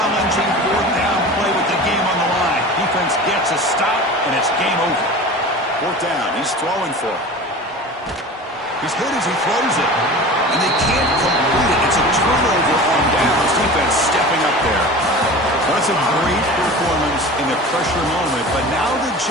fourth down play with the game on the line. Defense gets a stop, and it's game over. Fourth down. He's throwing for it. He's hit as he throws it, and they can't complete it. It's a turnover on downs. Defense stepping up there. Well, that's a great performance in the pressure moment, but now the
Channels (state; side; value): normal; both; correlation 0.36